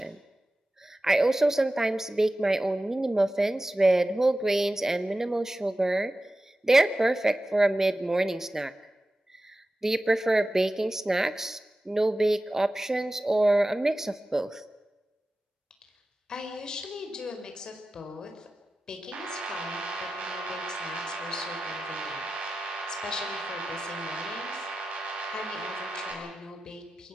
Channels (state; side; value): normal; both; correlation 0.94